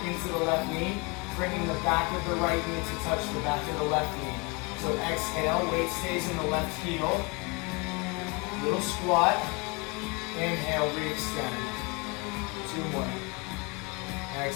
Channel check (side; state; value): right; quieter; 28.6 dB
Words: into the left knee, bringing the back of the right knee to touch the back of the left knee. So exhale, weight stays in the left heel. Little squat. Inhale, re-extend. 2 more.